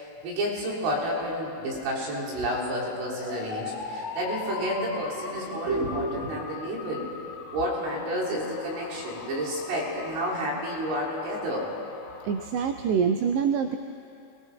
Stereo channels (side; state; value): left; late; 19 ms